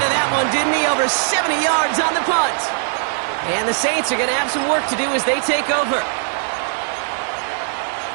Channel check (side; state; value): left; silent; digital silence